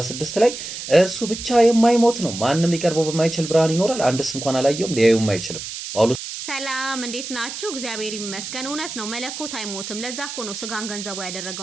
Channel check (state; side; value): noise; right; hiss, 8 dB below the sound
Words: ላይ እርሱ ብቻ የማይሞት ነው፣ ማንም ሊቀርበው በማይችል ብርሃን ይኖራል፣ አንድስ እንኳን አላየውም ሊያዩም አይችልም። ጳውሎስ ሰላም እንዴት ናችሁ? እግዚአብሔር ይመስገን። እውነት ነው፣ መለኮት አይሞትም። ለዛ እኮ ነው ስጋን ገንዘቡ